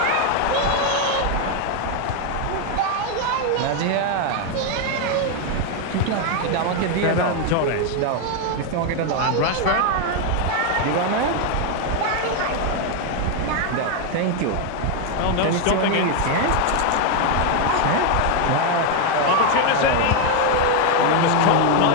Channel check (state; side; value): different; both; correlation 0.01